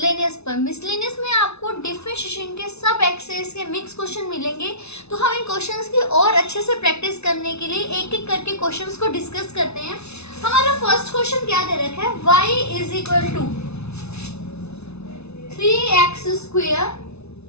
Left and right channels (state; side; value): late; right; 0.80 ms